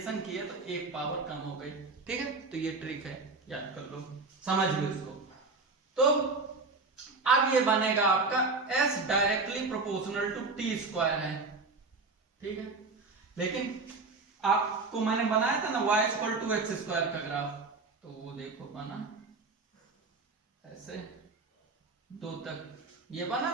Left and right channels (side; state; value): left; quieter; 3.8 dB